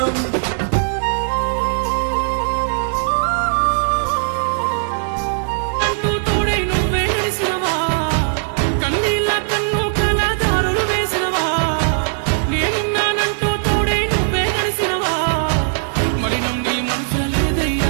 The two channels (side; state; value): left; silent; digital silence